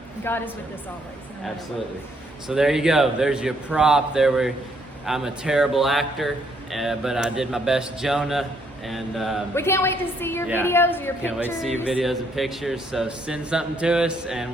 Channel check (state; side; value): normal; both; correlation 0.70